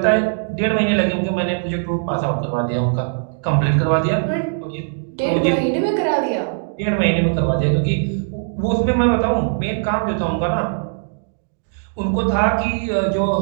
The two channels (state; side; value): silent; left; digital silence